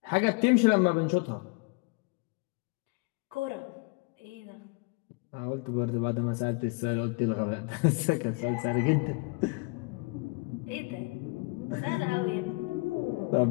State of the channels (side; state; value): right; quieter; 29.6 dB